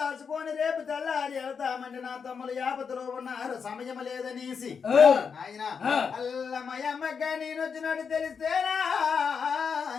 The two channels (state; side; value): quieter; right; 6.1 dB